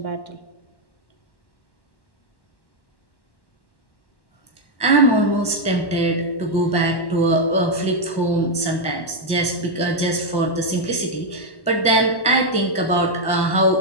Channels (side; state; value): right; late; 1.1 ms